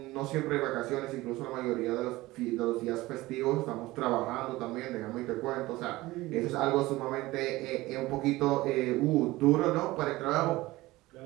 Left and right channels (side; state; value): left; quieter; 19.0 dB